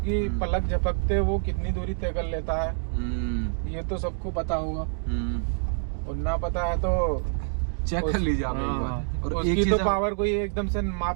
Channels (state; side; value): silent; left; digital silence